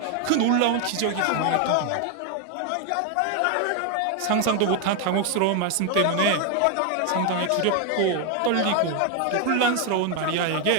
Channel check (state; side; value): different; both; correlation 0.01